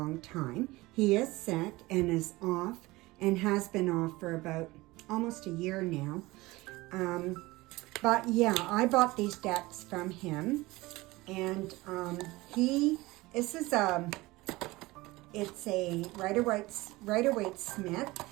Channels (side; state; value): left; quieter; 20.6 dB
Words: time. He is sick and is off and has been off for about almost a year now. But yeah, I bought these decks from him. And this is it's a Rider-Waite-Smith